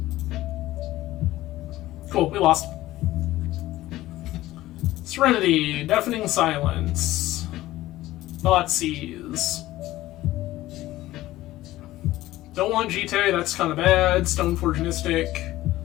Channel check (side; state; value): right; quieter; 16.1 dB